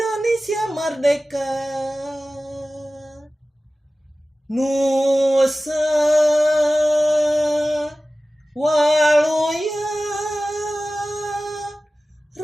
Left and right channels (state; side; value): normal; both; correlation 0.96